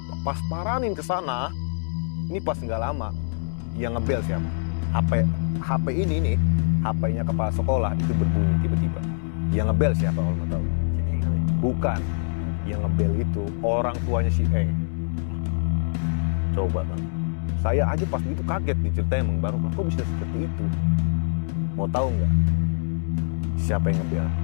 pas paranin ke sana. Ini pas nggak lama, yang ngebel siapa? HP ini nih, HP-nya kepala sekolah itu berbunyi tiba-tiba. Yang ngebel siapa kalau mau tahu? Bukan. Yang ngebel itu orang tuanya si Eng. Coba kan. Saya aja pas begitu kaget diceritain Bang Barokah, kok bisa seperti itu? Mau tahu nggak? Siapa yang ngebel?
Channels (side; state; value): right; silent; digital silence